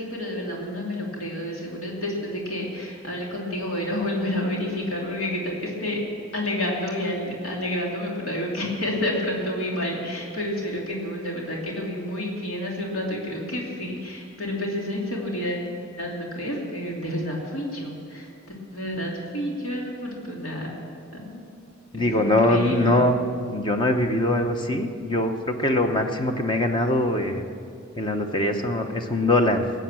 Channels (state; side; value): normal; both; correlation 0.33